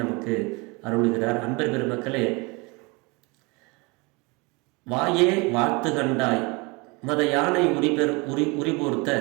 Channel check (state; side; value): quieter; left; 27.5 dB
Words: நமக்கு அருளுகிறார். அன்பர் பெருமக்களே, வாயே வாழ்த்து கண்டாய் மத யானை உரிபோர்த்த